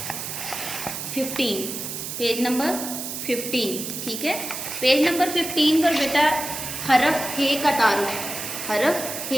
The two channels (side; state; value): right; noise; hiss, 6 dB below the sound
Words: 15। Page number 15, ठीक है। पेज नंबर 15 पर बेटा हरफ हे का तारुफ, हरफ